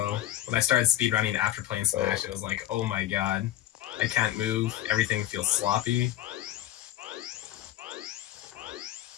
when I started speedrunning after playing Smash, it was like, oh my god, I can't move. Everything feels sloppy.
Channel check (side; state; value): right; quieter; 13.5 dB